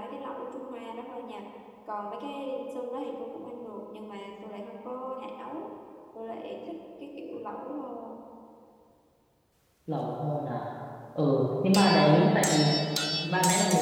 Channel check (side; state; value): both; identical; correlation 1.00